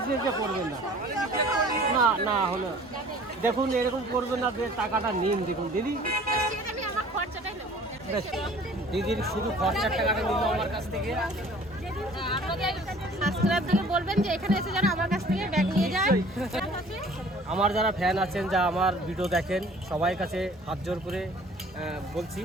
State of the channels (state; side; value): normal; both; correlation 0.50